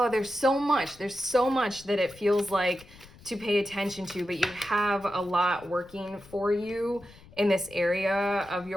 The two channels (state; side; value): noise; left; rumble, 23 dB below the sound